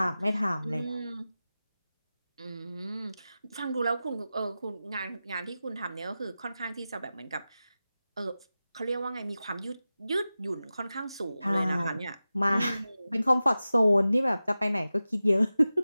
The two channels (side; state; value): both; inverted; correlation -0.95